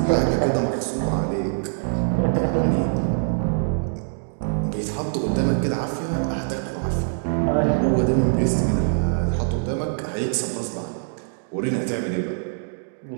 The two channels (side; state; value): left; silent; digital silence